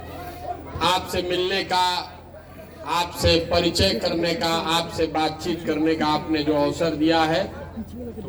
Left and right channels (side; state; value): both; identical; correlation 1.00